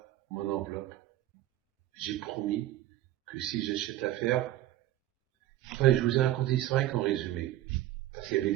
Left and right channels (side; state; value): left; quieter; 14.3 dB